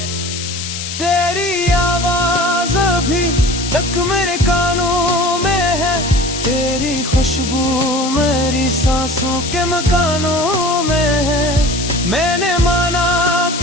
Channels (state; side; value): noise; left; hiss, 7 dB below the sound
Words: तेरी आवाज अभी तक मेरे कानों में है, तेरी खुशबू मेरी सांसों के मकानों में है। मैंने माना